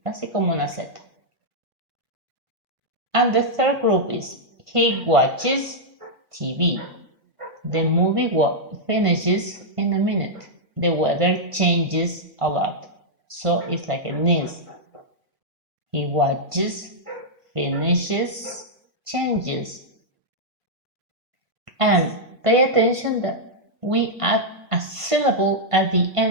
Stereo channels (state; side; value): late; left; 1.5 ms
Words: casi como una Z. And the third group is he watches TV. The movie finishes in a minute. The weather changes a lot. So it's like a NIS. He watches, finishes, changes. And pay attention that we add a syllable at the